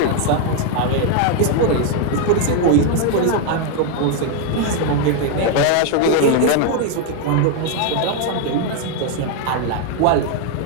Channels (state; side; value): different; both; correlation 0.01